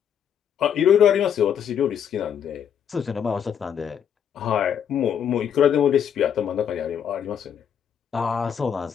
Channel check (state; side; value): quieter; right; 8.4 dB